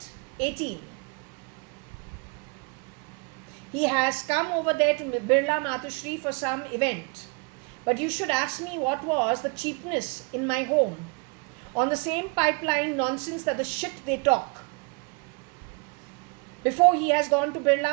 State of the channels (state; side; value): quieter; left; 32.0 dB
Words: he has come over there to Birla Matushri for some event. But you should ask me what was the cheapness in my home on the same pipeline nonsense that the shit they talk. Before he has gone to